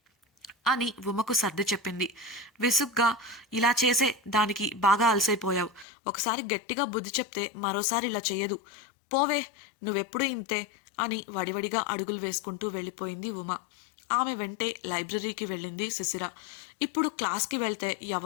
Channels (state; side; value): drops out; right; at 5.9 s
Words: అని ఉమకు సర్ది చెప్పింది. విసుగ్గా ఇలా చేసే దానికి బాగా అలసైపోయావు, ఒకసారి గట్టిగా బుద్ధి చెప్తే మరోసారి ఇలా చెయ్యదు, పోవే, నువ్వెప్పుడు ఇంతే అని వడివడిగా అడుగులు వేసుకుంటూ వెళ్ళిపోయింది ఉమ. ఆమె వెంటే లైబ్రరీకి వెళ్ళింది శిశిర. ఇప్పుడు క్లాస్కి వెళ్తే